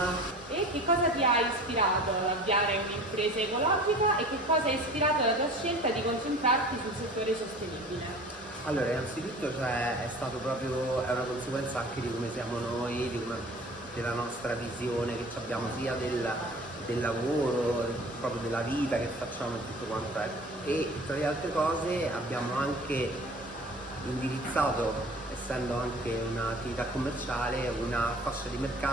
E che cosa ti ha ispirato ad avviare un'impresa ecologica e che cosa ha ispirato la tua scelta di concentrarti sul settore sostenibile? Allora, innanzitutto è stato proprio, è una conseguenza anche di come siamo noi, della nostra visione che abbiamo sia del lavoro, proprio della vita che facciamo e tutto quanto è. E tra le altre cose abbiamo anche indirizzato, essendo anche un'attività commerciale, una fascia di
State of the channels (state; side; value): normal; both; correlation 0.43